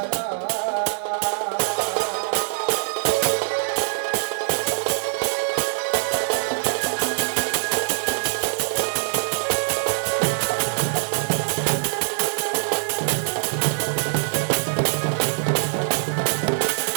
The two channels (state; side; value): silent; left; digital silence